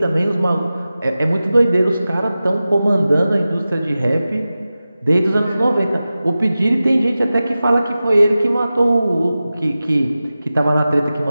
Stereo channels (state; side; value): inverted; both; correlation -0.95